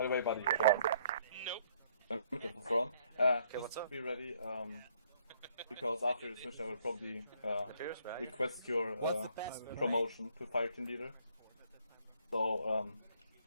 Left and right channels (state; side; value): inverted; both; correlation -0.65